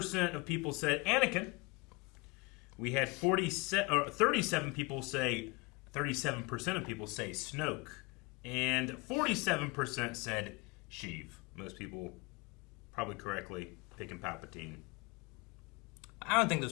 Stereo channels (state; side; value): quieter; right; 26.2 dB